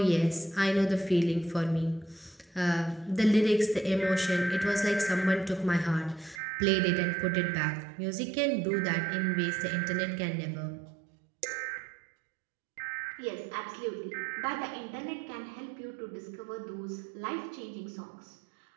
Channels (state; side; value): drops out; left; at 6.4 s